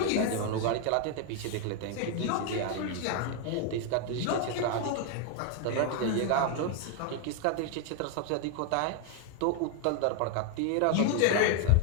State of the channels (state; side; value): different; both; correlation 0.00